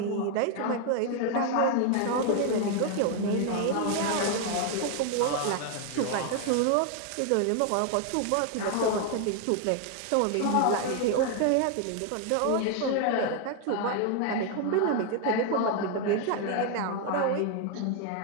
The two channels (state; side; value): different; both; correlation 0.00